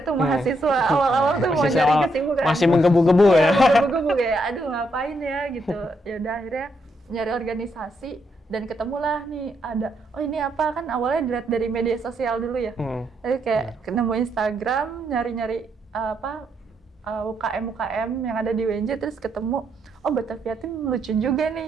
tuh mahasiswa awal-awal tuh mau nyari kesibukan. Masih menggebu-gebu ya. Menggebu-gebu kayak aduh ngapain ya gitu. Ya udah akhirnya nyari organisasi dan ketemulah nih ada ini apa kan awalnya dilihat dari media sosial dulu ya. Jadi kayak nemu Instagram nyari-nyari UKM yang ada di UNJ terus ketemu Batavia Team lucu juga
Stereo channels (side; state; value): both; normal; correlation 0.78